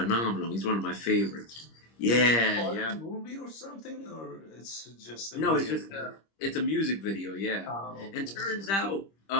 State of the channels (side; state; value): right; late; 25 ms